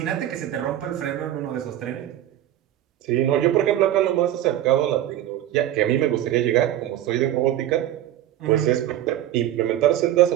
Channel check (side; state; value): left; quieter; 12.6 dB